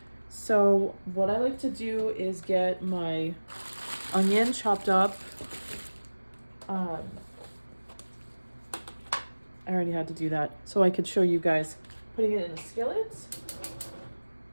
So what I like to do is get my onion chopped up. I already had to do that so I could show you guys putting it in the skillet.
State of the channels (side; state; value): both; inverted; correlation -1.00